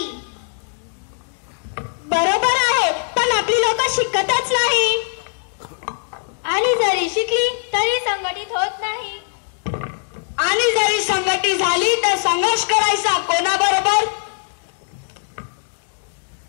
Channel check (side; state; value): right; silent; digital silence